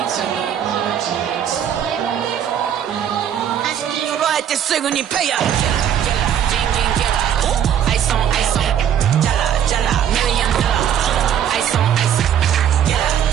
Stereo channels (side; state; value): left; quieter; 9.4 dB